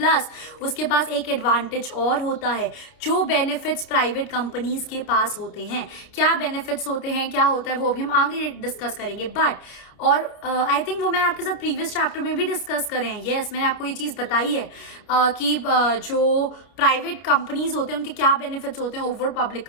उसके पास एक एडवांटेज और होता है जो बेनिफिट्स प्राइवेट कंपनीज के पास होते हैं. क्या बेनिफिट्स होते हैं, क्या होता है, वो अभी हम आगे डिस्कस करेंगे. बट और आई थिंक वो मैंने आपके साथ प्रीवियस चैप्टर में भी डिस्कस करे हैं. यस, मैंने आपको ये चीज़ बताई है कि जो प्राइवेट कंपनीज होते हैं उनके क्या बेनिफिट्स होते हैं ओवर पब्लिक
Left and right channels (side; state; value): right; late; 30 ms